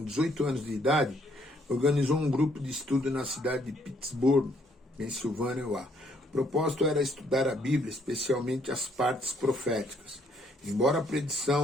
18 anos de idade, organizou um grupo de estudo na cidade de Pittsburgh, Pensilvânia. O propósito era estudar a Bíblia, especialmente as partes proféticas. Embora a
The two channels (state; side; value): normal; both; correlation 0.68